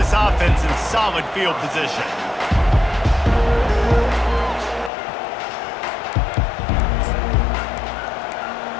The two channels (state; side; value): drops out; right; at 4.9 s